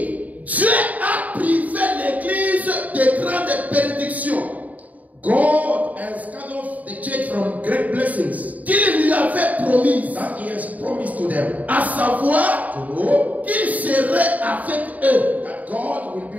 Dieu a privé l'Église de grandes bénédictions God has cut off the church from great blessings qu'il lui avait promises, that he has promised to them. à savoir To know qu'il serait avec eux. that God will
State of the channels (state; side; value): late; left; 0.074 ms